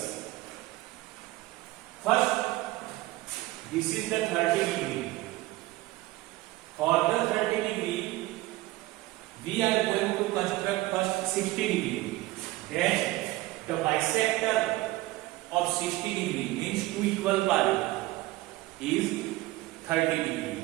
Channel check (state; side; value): quieter; left; 18.8 dB